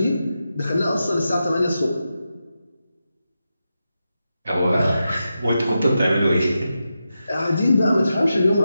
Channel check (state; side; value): inverted; both; correlation -0.89